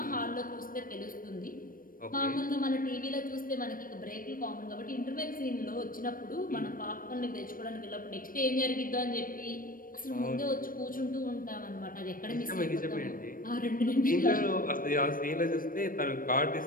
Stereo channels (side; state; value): right; late; 0.41 ms